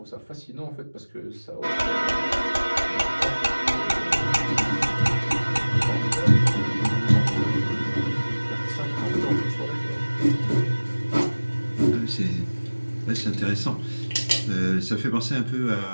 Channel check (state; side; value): inverted; both; correlation -1.00